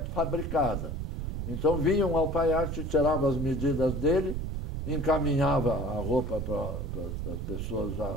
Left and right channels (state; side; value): noise; right; rumble, 3 dB below the sound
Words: Então vinha um alfaiate, tirava as medidas dele, encaminhava a roupa para as pessoas já